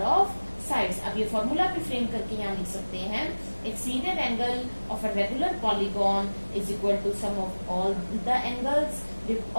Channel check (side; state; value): both; inverted; correlation -1.00